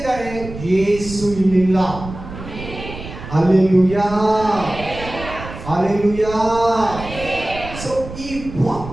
ಯೇಸು ಇಲ್ಲಿಲ್ಲ. Hallelujah, hallelujah. ಸೊ ಈ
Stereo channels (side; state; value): right; noise; rumble, 12 dB below the sound